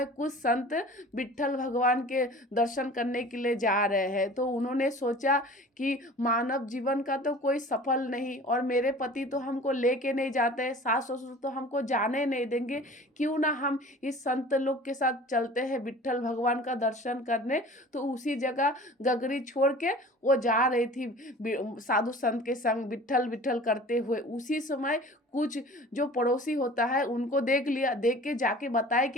कुछ संत विट्ठल भगवान के दर्शन करने के लिए जा रहे हैं। तो उन्होंने सोचा कि मानव जीवन का तो कोई सफल नहीं, और मेरे पति तो हमको लेके नहीं जाते, सास ससुर तो हमको जाने नहीं देंगे, क्यों ना हम इस संत लोग के साथ चलते हैं विट्ठल भगवान का दर्शन करने। तो उसी जगह गगरी छोड़ के वो जा रही थी साधु संत के संग विट्ठल विट्ठल करते हुए। उसी समय कुछ जो पड़ोसी होता है उनको देख लिया, देख के जाके बताए कि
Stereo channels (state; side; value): normal; both; correlation 0.43